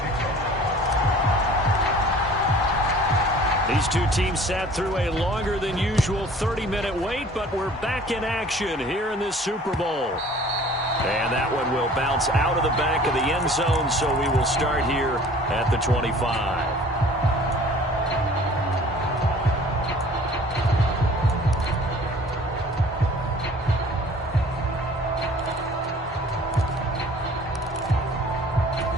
These two teams sat through a longer than usual 30-minute wait, but we're back in action here in this Super Bowl. And that one will bounce out of the back of the end zone, so we will start here at the 25.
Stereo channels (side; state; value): both; normal; correlation 0.49